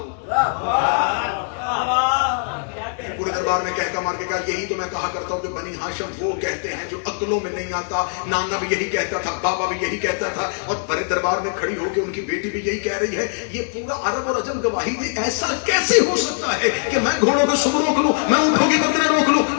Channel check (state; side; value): silent; right; 65 dB below the other